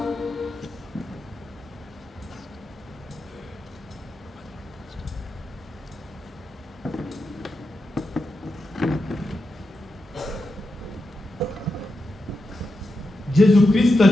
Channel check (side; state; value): both; normal; correlation 0.88